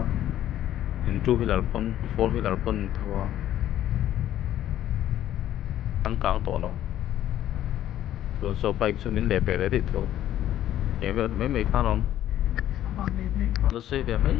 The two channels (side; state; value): right; quieter; 12.2 dB